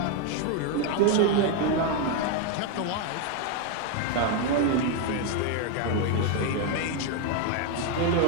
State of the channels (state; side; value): different; both; correlation 0.01